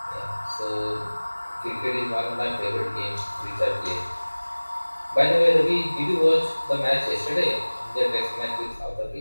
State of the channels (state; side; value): inverted; both; correlation -1.00